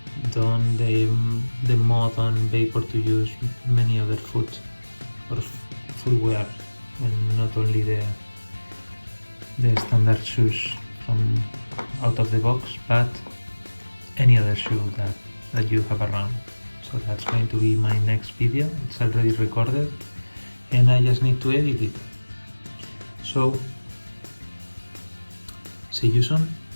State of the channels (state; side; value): inverted; both; correlation -1.00